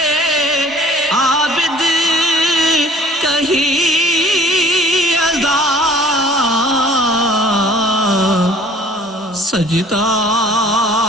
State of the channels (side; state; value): both; normal; correlation 0.52